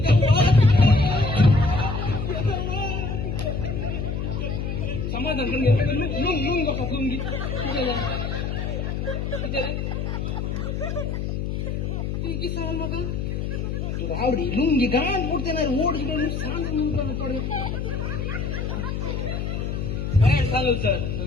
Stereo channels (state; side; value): noise; left; hum, 2 dB below the sound